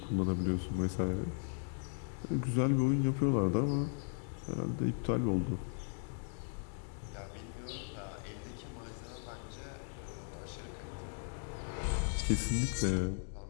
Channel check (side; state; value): right; silent; 53 dB below the other